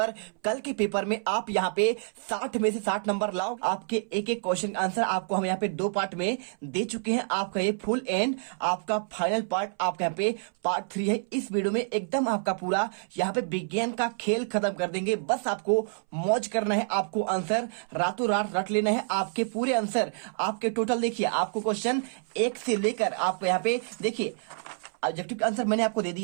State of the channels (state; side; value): silent; left; 59 dB below the other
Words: कल के पेपर में आप यहाँ पे 60 में से 60 नंबर लाओ। आपके एक एक क्वेश्चन आंसर आपको हम यहाँ पे 2 पार्ट में दे चुके हैं। आपका ये फुल एंड आपका फाइनल पार्ट आपका यहाँ पे पार्ट 3 है। इस वीडियो में एकदम आपका पूरा यहाँ पे विज्ञान का खेल खत्म कर देंगे। बस आपको मौज करना है, आपको आंसर रातों रात रट लेना है। आपके पूरे आंसर आपके टोटल देखिए, आपको क्वेश्चन 1 से लेकर आपको यहाँ पे देखिए ऑब्जेक्टिव का आंसर मैंने आपको दे